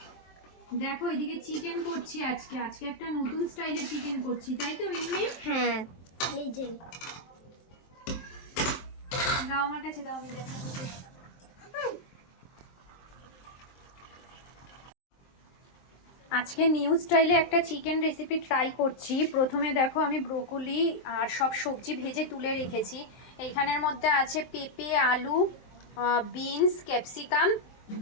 দেখো এদিকে চিকেন করছি আজকে একটা নতুন স্টাইলের চিকেন করছি, তাই তো মিমি? হ্যাঁ এই যে দাও আমার কাছে, দাও আমি দেখাবো। আজকে নিউ স্টাইলে একটা চিকেন রেসিপি ট্রাই করছি। প্রথমে দেখো আমি ব্রোকলি আর সব সবজি ভেজে তুলে রেখেছি। এইখানের মধ্যে আছে পেঁপে, আলু, বিনস, ক্যাপসিকাম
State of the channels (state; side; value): late; right; 23 ms